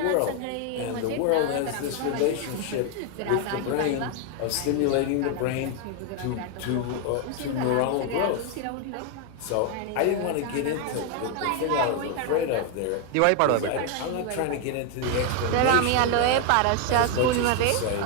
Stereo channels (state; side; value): different; both; correlation 0.01